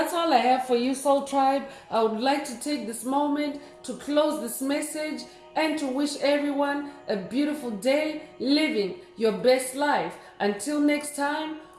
all I have for you, Soul Tribe. I would like to take this moment to close this message and to wish everyone a beautiful day living your best life. Until next time,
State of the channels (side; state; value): both; identical; correlation 1.00